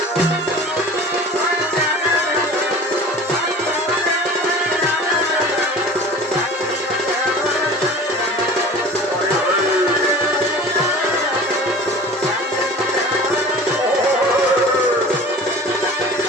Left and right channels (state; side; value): normal; both; correlation 0.40